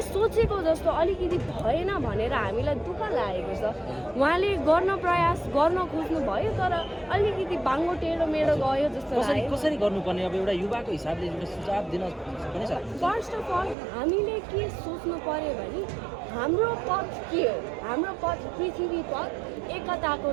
सोचेको जस्तो अलिकति भएन भनेर हामीलाई दुःख लागेको छ। उहाँले गर्न प्रयास गर्न खोज्नु भयो तर अलिकति बाङ्गो टेढो मेढो गयो जस्तो लाग्यो। कसरी गर्नुपर्ने अब एउटा युवाको हिसाबले एउटा सुझाव दिन सक्ने छ? फर्स्ट अफ अल हामीले के सोच्नु पर्यो भने हाम्रो पथ के हो? हाम्रो पथ पृथ्वी पथ, एकताको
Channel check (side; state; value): left; drops out; at 13.8 s